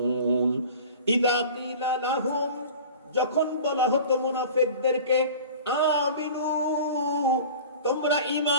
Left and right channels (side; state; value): both; inverted; correlation -0.40